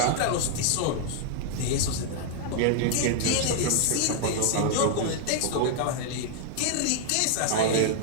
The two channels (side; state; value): both; different; correlation -0.01